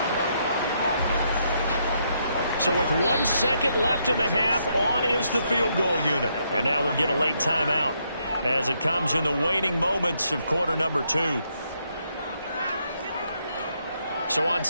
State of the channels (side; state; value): both; inverted; correlation -0.76